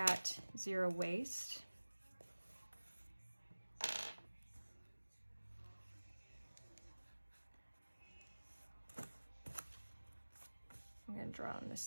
zero waste. I'm going to draw on this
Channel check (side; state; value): both; inverted; correlation -1.00